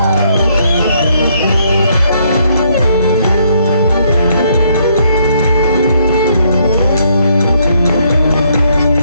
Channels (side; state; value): both; inverted; correlation -0.70